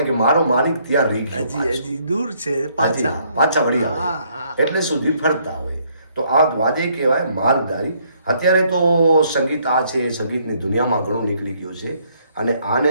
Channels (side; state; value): both; inverted; correlation -0.68